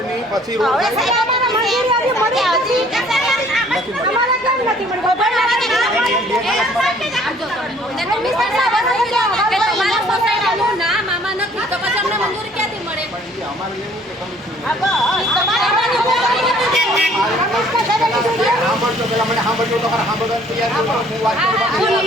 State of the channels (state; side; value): normal; both; correlation 0.58